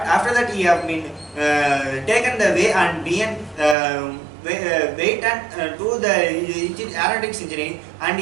after that he have been taken the way and been wait and do the aeronautics engineering, and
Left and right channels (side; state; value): left; drops out; at 3.8 s